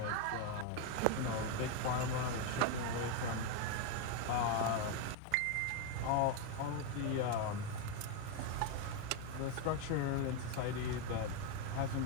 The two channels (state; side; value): different; both; correlation 0.01